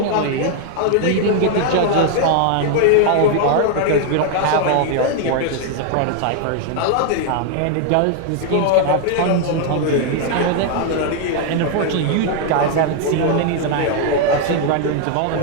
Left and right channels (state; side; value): different; both; correlation 0.00